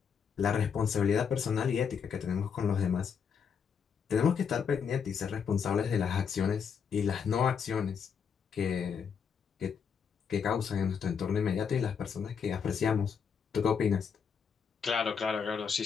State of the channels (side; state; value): right; quieter; 6.7 dB